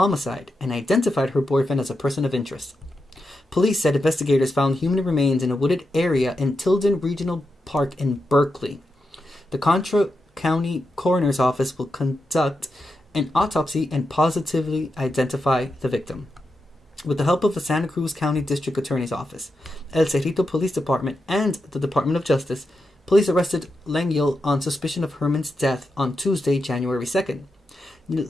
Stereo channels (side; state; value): both; normal; correlation 0.87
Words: and identified her boyfriend as a person of interest. Police said investigators found human remains in a wooded area in Tilden Regional Park in Berkeley. The Contra County Coroner's Office will conduct an autopsy and positively identify the victim. With the help of the Santa Cruz County District Attorney's Office, El Cerrito Police Department, and the Department of Justice, police arrested Lengyel on suspicion of Herman's death on Tuesday, January 2nd.